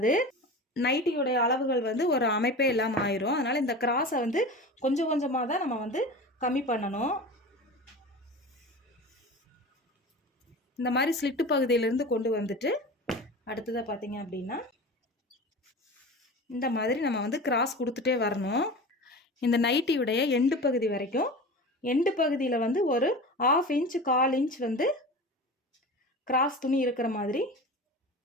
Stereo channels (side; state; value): both; normal; correlation 0.32